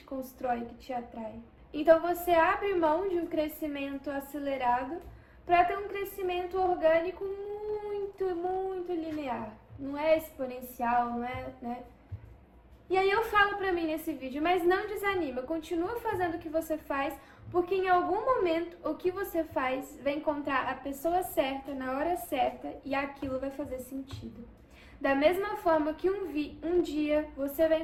constrói, que te atrai. Então você abre mão de um crescimento acelerado para ter um crescimento orgânico muito, muito linear. Não é exponencial, não é, né? E aí eu falo pra mim nesse vídeo, mas não desanima, continua fazendo o que você faz, porque em algum momento o que você faz vai encontrar a pessoa certa, na hora certa, e aquilo vai fazer sentido. Da mesma forma que um dia você vai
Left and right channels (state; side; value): identical; both; correlation 1.00